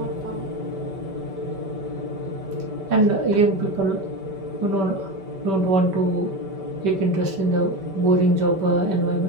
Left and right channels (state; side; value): late; left; 5.2 ms